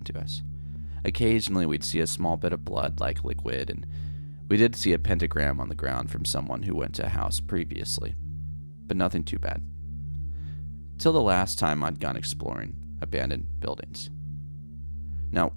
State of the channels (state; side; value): inverted; both; correlation -1.00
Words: to us. Occasionally we'd see a small bit of blood-like liquid, and we did see a pentagram on the ground from someone who went to a house previously, but nothing too bad. Till the last time I'd gone exploring abandoned buildings. Now,